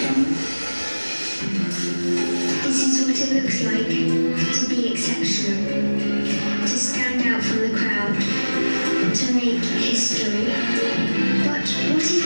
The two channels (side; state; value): both; inverted; correlation -1.00